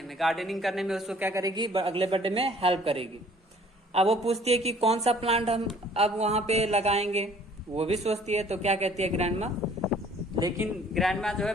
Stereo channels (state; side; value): normal; both; correlation 0.55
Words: करने में उसको क्या करेगी, अगले बर्थडे में हेल्प करेगी। अब वो पूछती है कि कौन सा प्लांट हम अब वहां पे लगाएंगे, वो भी सोचती है। तो क्या कहती है ग्रैंडमा, लेकिन ग्रैंडमा जो है